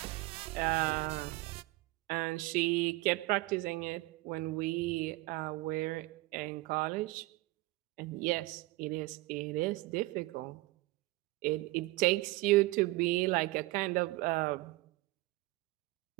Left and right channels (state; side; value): quieter; left; 20.5 dB